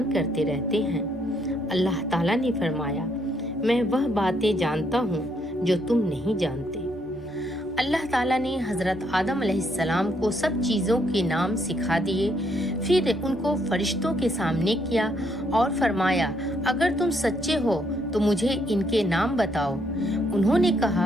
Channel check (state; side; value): normal; both; correlation 0.72